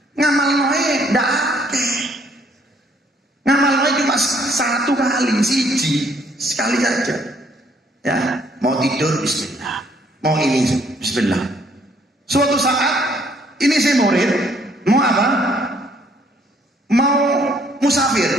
Ngamal noe ndak akeh. Ngamal noe cuma 1 kali, sekali saja. Ya, mau tidur bismillah. Mau ini bismillah. Suatu saat ini saya murid, mau apa? Mau musafir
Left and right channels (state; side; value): normal; both; correlation 0.65